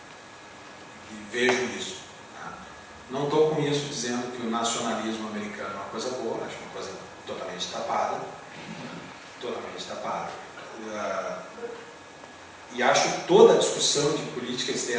E vejo isso. Não estou com isso dizendo que o nacionalismo americano é uma coisa boa, acho uma coisa totalmente tapada. Totalmente tapada. E acho toda a discussão de política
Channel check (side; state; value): both; identical; correlation 1.00